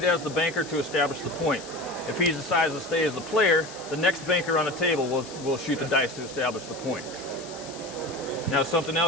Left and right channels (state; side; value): noise; left; hiss, 15 dB below the sound